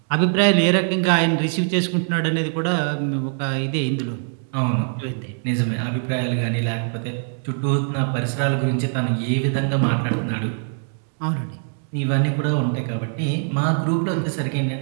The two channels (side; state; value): left; silent; 61 dB below the other